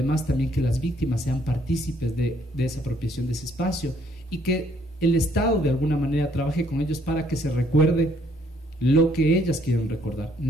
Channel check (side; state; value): both; normal; correlation 0.67